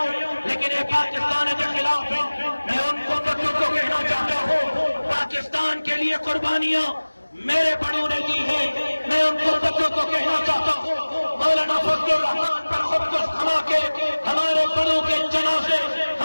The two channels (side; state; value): both; inverted; correlation -1.00